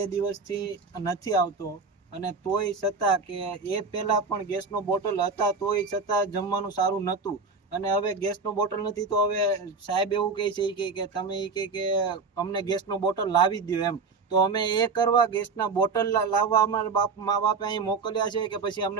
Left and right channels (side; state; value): left; quieter; 4.6 dB